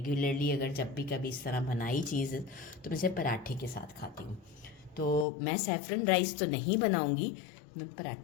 अगर जब भी कभी इस तरह बनाई चीज़ तो मैं इसे पराठे के साथ खाती हूँ। तो मैं सैफरन राइस तो नहीं बनाऊँगी, मैं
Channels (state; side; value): drops out; right; at 5.2 s